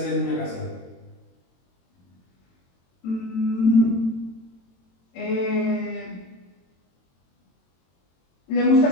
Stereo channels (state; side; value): late; right; 22 ms